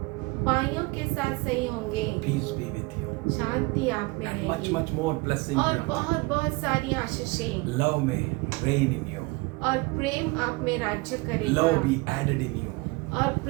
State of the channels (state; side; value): quieter; left; 25.1 dB